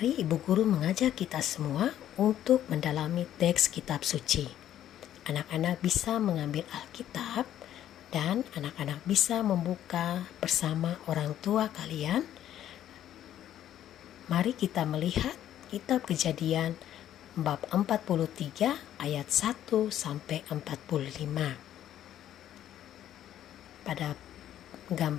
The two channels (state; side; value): quieter; right; 11.5 dB